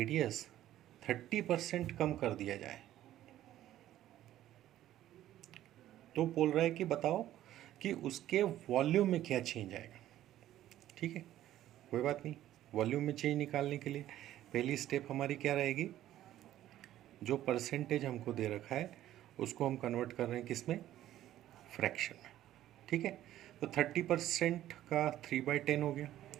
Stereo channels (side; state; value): left; quieter; 13.1 dB